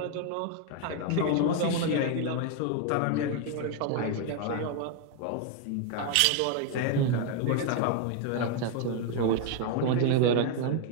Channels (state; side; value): different; both; correlation 0.01